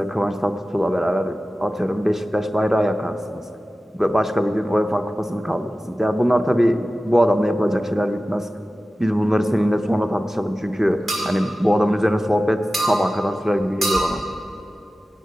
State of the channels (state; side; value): normal; both; correlation 0.95